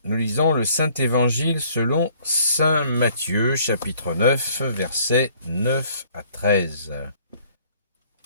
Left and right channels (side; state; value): both; inverted; correlation -0.60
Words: Nous lisons le Saint-Évangile selon Saint Matthieu, chapitre 9, versets 9 à 13.